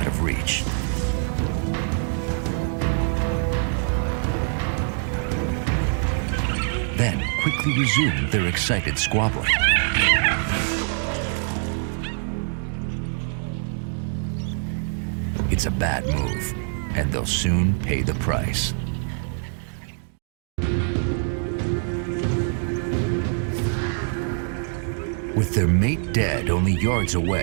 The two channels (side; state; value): left; silent; 59 dB below the other